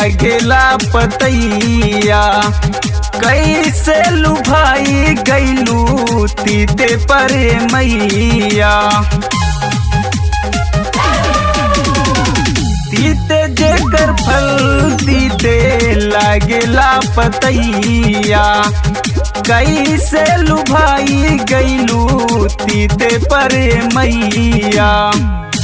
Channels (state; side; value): identical; both; correlation 1.00